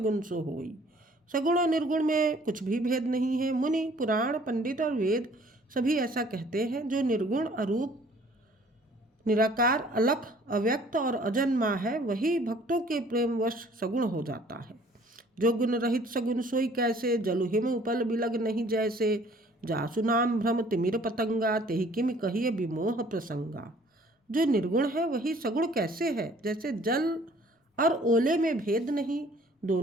सो होई। सगुण और निर्गुण में कुछ भी भेद नहीं है। मुनि पुराण पंडित और वेद सभी ऐसा कहते हैं। जो निर्गुण अरूप निराकार अलख अव्यक्त और अजन्मा है, वही भक्तों के प्रेमवश सगुण हो जाता है। जो गुण रहित सगुन सोई कैसे, जलु हिम उपल बिलग नहीं जैसे। जासु नाम भ्रम तिमिर पतंगा, तेहि किम कहिए विमोह प्रसंगा। जो निर्गुण है वही सगुण कैसे है, जैसे जल और ओले में भेद नहीं,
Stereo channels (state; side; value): normal; both; correlation 0.56